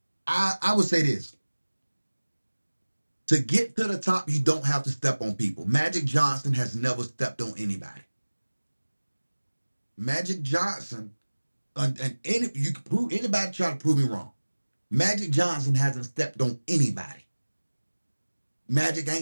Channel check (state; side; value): inverted; both; correlation -1.00